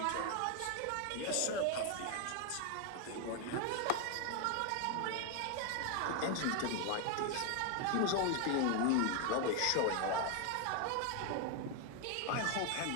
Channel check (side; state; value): both; different; correlation 0.01